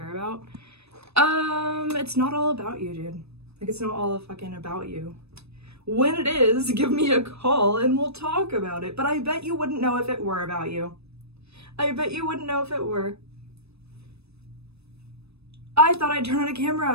about. It's not all about you, dude. Like, it's not all fucking about you. When it is, give me a call and we'll talk about it. But I bet you wouldn't know if it were about you. I bet you wouldn't know if it were. I thought I'd turn on a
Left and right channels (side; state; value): left; late; 0.79 ms